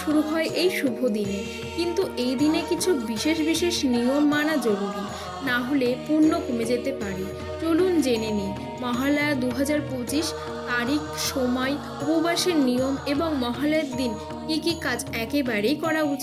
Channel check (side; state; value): both; identical; correlation 1.00